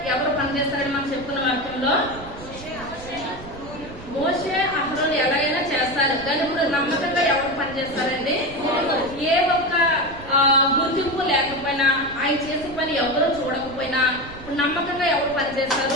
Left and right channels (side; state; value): right; noise; rumble, 16 dB below the sound